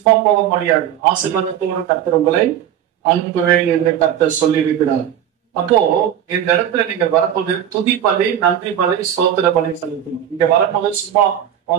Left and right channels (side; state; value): left; quieter; 10.1 dB